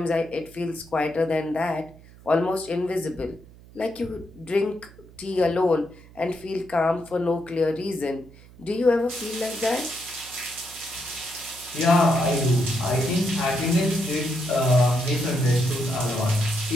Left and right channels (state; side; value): noise; right; hum, 22 dB below the sound